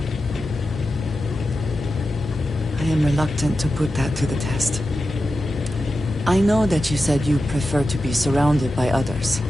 I am reluctant to put that to the test. I know that you said you prefer to be surrounded by others,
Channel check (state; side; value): normal; both; correlation 0.91